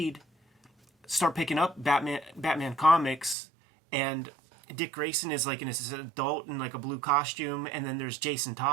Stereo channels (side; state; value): left; drops out; at 3.4 s